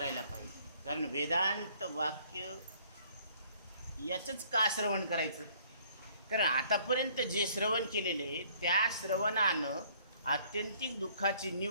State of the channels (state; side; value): inverted; both; correlation -0.59